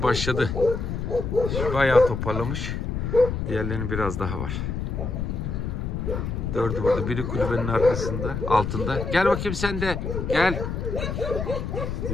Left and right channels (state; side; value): noise; left; rumble, 3 dB below the sound